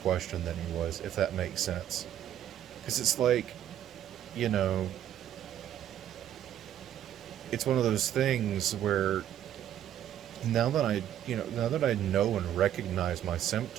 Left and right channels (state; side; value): quieter; left; 10.9 dB